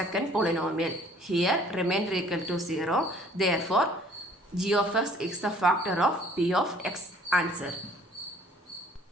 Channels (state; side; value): normal; both; correlation 0.56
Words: polynomial. Here remainder equal to 0. Therefore, g of x is the factor of p of x. Answer.